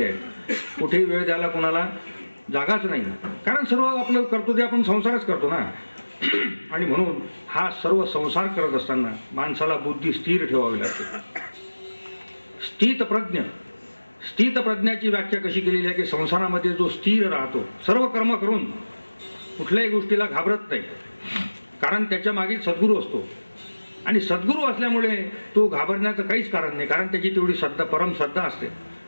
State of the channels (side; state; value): both; inverted; correlation -1.00